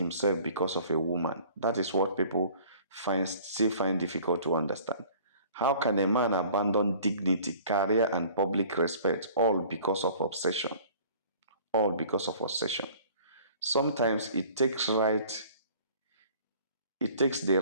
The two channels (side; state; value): both; inverted; correlation -0.50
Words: because of a woman? That is what people still find difficult to understand. How can a man abandon dignity, career, and public respect all because of obsession? All because of obsession. Sometimes it takes the